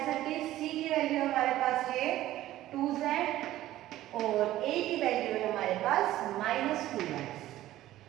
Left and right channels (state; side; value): quieter; left; 14.6 dB